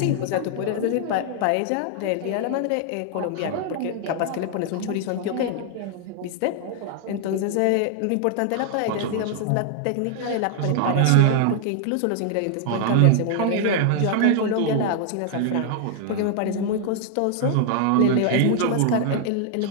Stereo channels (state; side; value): different; both; correlation 0.00